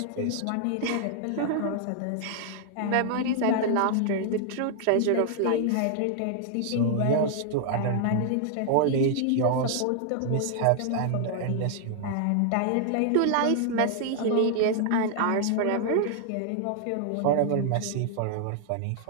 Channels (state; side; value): different; both; correlation -0.01